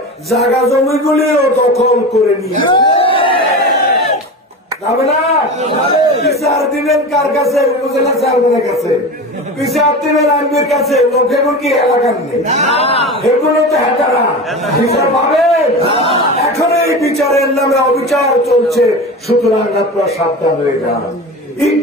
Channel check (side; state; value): both; normal; correlation 0.28